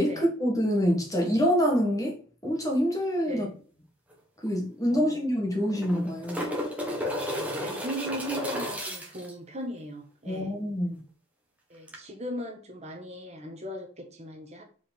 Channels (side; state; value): both; normal; correlation 0.68